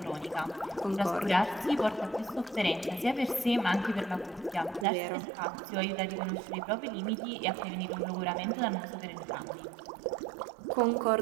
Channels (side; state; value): left; drops out; at 4.9 s